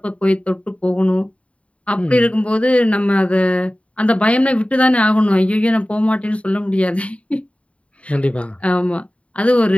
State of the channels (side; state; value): right; late; 0.064 ms